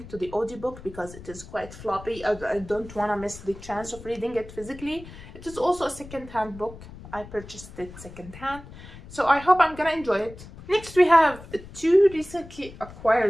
to the audiobook because it is quite floppy. I don't want to miss the chance of reading it physically. It is also a second-hand book. I purchased it second-hand, so I hope I'm gonna enjoy it. Next we have 2 recently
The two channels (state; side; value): noise; left; rumble, 16 dB below the sound